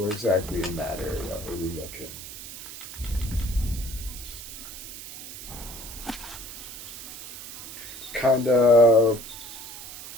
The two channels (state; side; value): noise; right; hiss, 12 dB below the sound